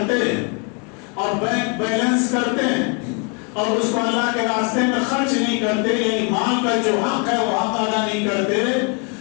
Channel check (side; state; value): right; quieter; 36.0 dB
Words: ہیں اور بینک بیلنس کرتے ہیں اور اس کو اللہ کے راستے میں خرچ نہیں کرتے، یعنی مال کا جو حق ہے وہ حق ادا نہیں کرتے،